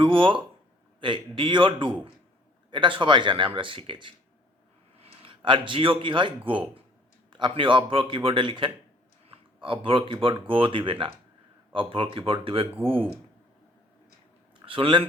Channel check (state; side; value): normal; both; correlation 0.58